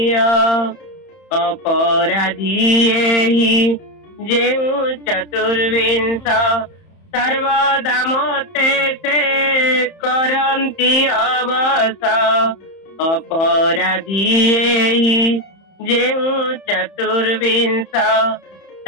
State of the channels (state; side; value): late; right; 31 ms